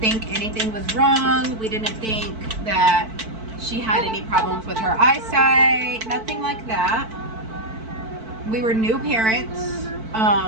think anything was wrong. We didn't think that she had any problems with her eyesight, nothing like that. We were new parents.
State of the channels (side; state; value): left; late; 4.5 ms